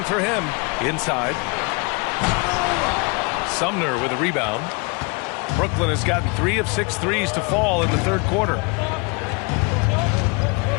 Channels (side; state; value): right; quieter; 30.4 dB